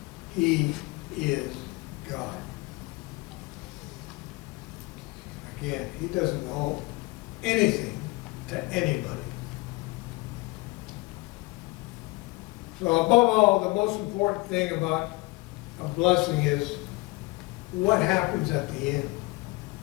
He is God. Again, He doesn't owe anything to anybody. So above all, the most important thing about a blessing is what happens at the end.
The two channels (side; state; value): right; quieter; 24.0 dB